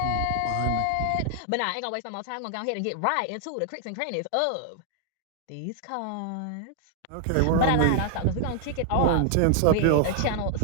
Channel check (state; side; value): different; both; correlation 0.00